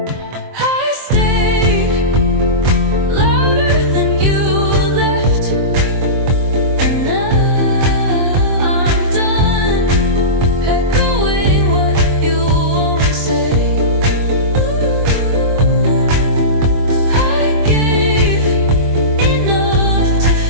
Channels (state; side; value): late; left; 23 ms